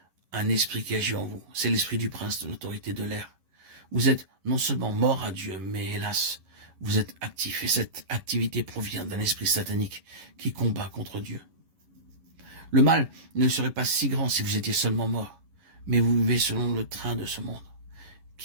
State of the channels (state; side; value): late; left; 11 ms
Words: un esprit qui agit en vous. C'est l'esprit du prince de l'autorité de l'air. Vous êtes non seulement mort à Dieu, mais hélas, vous êtes actif. Et cette activité provient d'un esprit satanique qui combat contre Dieu. Le mal ne serait pas si grand si vous étiez seulement mort. Mais vous vivez selon le train de ce monde,